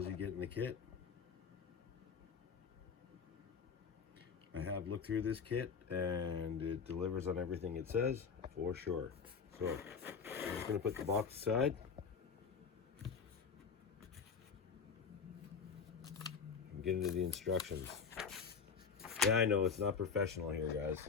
you get in the kit. I have looked through this kit and it delivers on everything it says, for sure. So, I'm just going to put the box aside. And get into the instructions. Yeah, I know, it's not professional here, guys.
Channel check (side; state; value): right; quieter; 5.9 dB